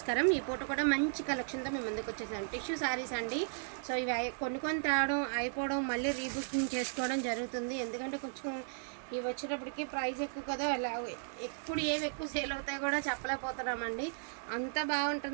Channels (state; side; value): silent; left; digital silence